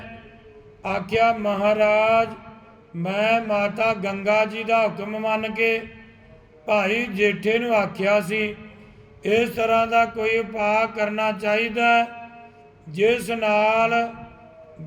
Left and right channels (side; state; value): both; identical; correlation 1.00